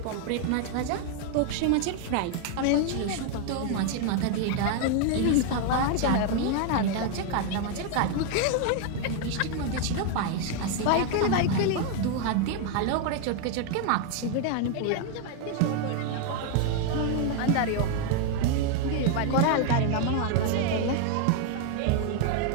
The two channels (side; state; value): both; different; correlation 0.01